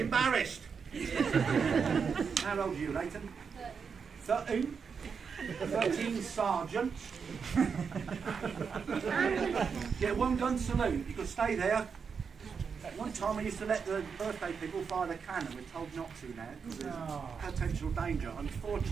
embarrassed. How old are you, Nathan? 13. 13 sergeant. Get 1 gun salute. You could stay there. One time we used to let the birthday people fire the cannon. We're told not to now because there's potential danger,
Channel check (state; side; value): quieter; left; 6.1 dB